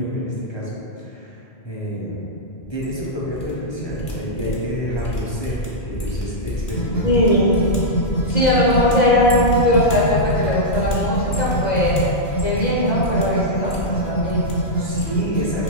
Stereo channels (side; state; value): right; late; 2.6 ms